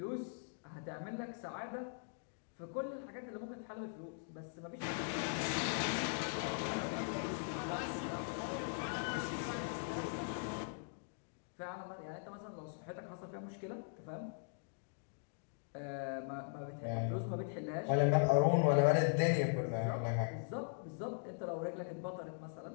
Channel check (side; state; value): right; silent; digital silence